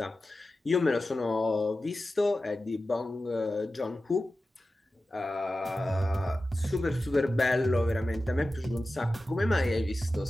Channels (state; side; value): normal; both; correlation 0.94